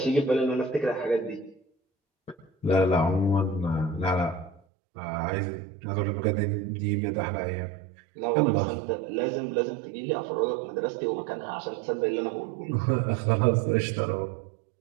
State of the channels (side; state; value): left; drops out; at 4.6 s